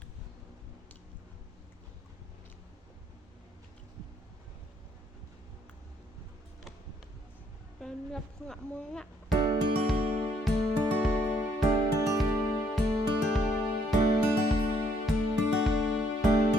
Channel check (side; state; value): both; normal; correlation 0.68